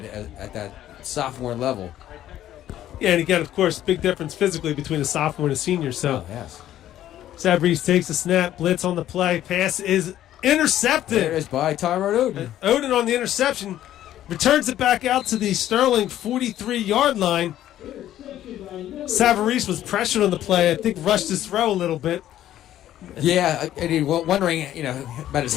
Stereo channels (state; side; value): quieter; right; 12.5 dB